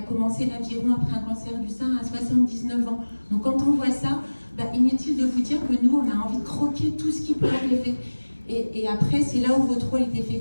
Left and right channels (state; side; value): inverted; both; correlation -1.00